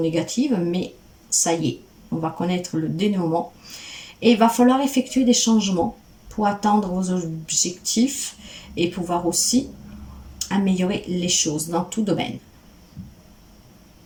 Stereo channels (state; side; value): identical; both; correlation 1.00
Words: négative, mais ça y est, on va connaître le dénouement. Et il va falloir effectuer des changements pour atteindre vos objectifs et pouvoir aussi améliorer les choses dans tout domaine.